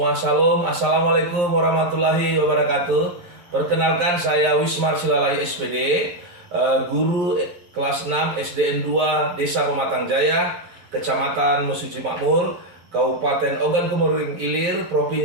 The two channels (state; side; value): late; left; 11 ms